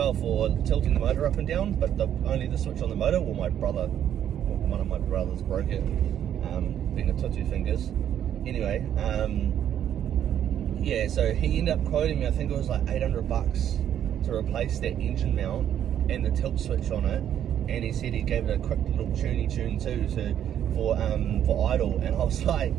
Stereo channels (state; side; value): quieter; left; 10.1 dB